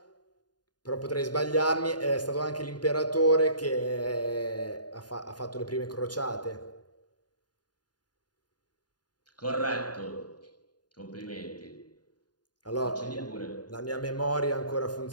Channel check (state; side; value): late; right; 0.70 ms